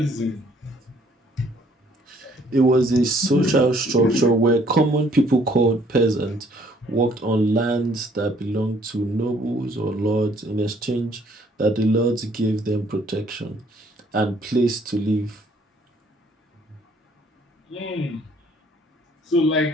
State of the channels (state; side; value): normal; both; correlation 0.62